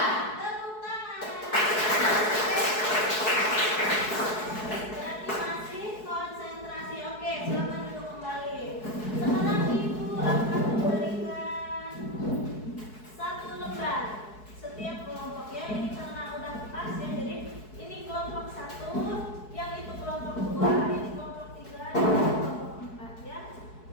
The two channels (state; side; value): late; right; 4.7 ms